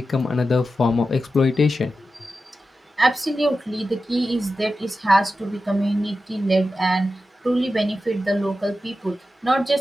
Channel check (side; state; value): both; normal; correlation 0.92